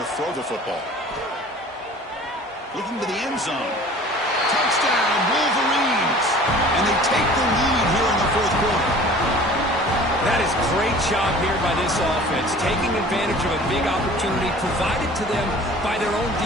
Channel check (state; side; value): normal; both; correlation 0.46